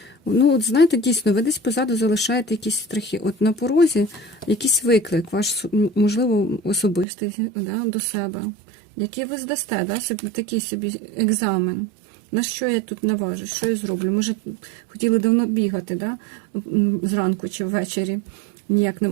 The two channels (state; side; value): drops out; left; at 7.1 s